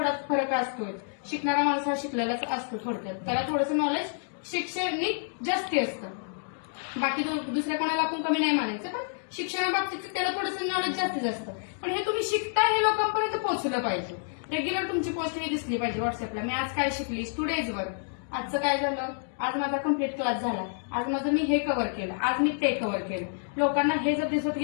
फरक असतोय. शिकणारा माणूस हा शिकलेलाच असतो थोडक्यात, त्याला थोडंसं नॉलेज शैक्षणिक जास्ती असतं. बाकी दुसऱ्या कोणाला आपण कमी नाही म्हणायचं, पण शिक्षणाबाबतीत त्याला थोडंसं नॉलेज जास्तीच असतं. पण हे तुम्ही शिकताय हे लोकांपर्यंत पोहोचलं पाहिजे. रेग्युलर तुमची पोस्ट ही दिसली पाहिजे व्हॉट्सअपला, मी आज काय शिकली, स्टुडेज वर आजचं काय झालं, आज माझा कम्प्लीट क्लास झाला, आज माझं मी हे कव्हर केलं, आज मी ते कव्हर केलं. लोकांना हे जर दिसत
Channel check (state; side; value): silent; right; digital silence